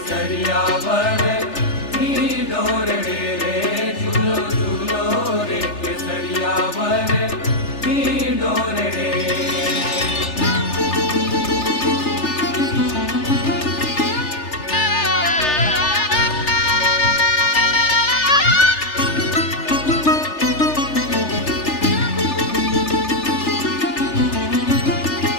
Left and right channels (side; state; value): right; late; 3.4 ms